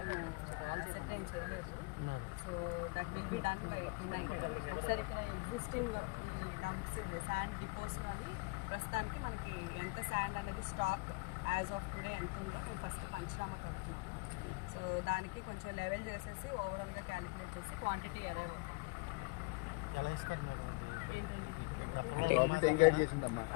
అసెర్టైన్ చేయలేదు. So that will be done by tonight. ఒకసారి ఇక్కడ ఎగ్జిస్టింగ్ ఈ డంప్స్ శాండ్ డిపోస్లో అని ప్రస్తుతానికి మనకి ఎంత శాండ్ అనేది స్టాక్ యాజ్ ఆఫ్ టుడే ఎంత ఉందో మేము ఫస్ట్ పంచనామా కడుతున్నాము. సో దానికి కొంచెం లెవెల్ చేసేసి ఓవరాల్గా క్యాలిక్యులేట్ చేసి క్వాంటిటీ అరైవ్ అవుతాం. ఎలా ఇస్తారు మేడం? ఏంటండి ఏంటండి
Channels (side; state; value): right; quieter; 28.0 dB